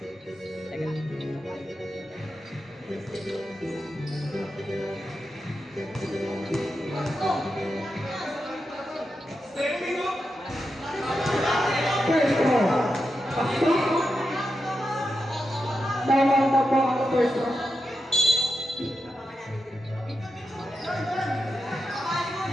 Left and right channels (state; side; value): normal; both; correlation 0.88